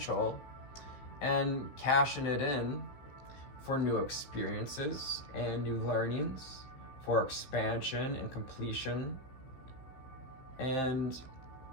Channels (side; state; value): right; late; 15 ms